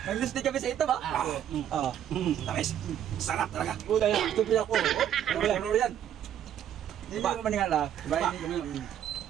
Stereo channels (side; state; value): left; quieter; 10.2 dB